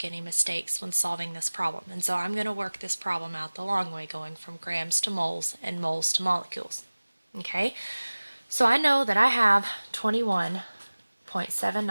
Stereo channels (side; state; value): both; inverted; correlation -1.00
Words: any mistakes when solving this problem. And so I'm going to work this problem out the long way, going from grams to moles and moles to molecules. Okay, so I know that I have